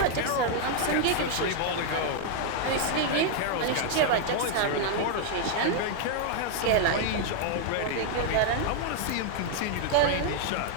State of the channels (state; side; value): different; both; correlation 0.00